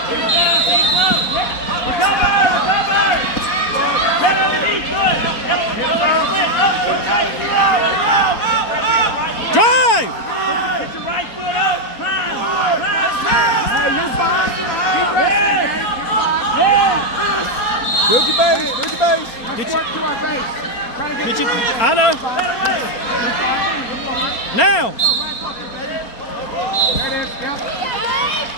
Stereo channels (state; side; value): late; right; 4.2 ms